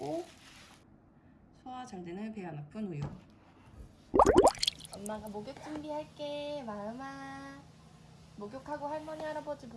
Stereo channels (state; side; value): identical; both; correlation 1.00